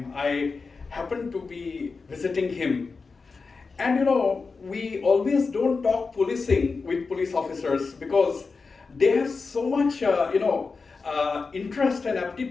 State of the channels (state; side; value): quieter; right; 4.5 dB